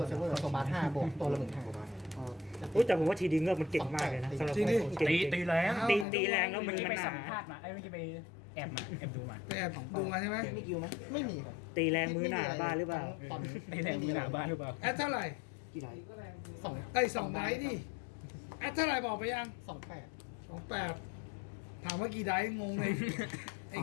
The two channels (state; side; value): drops out; right; at 6.1 s